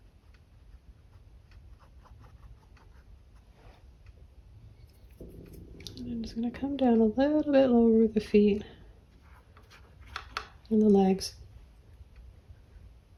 And I'm just going to come down a little bit lower with the feet and the legs.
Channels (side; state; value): both; identical; correlation 1.00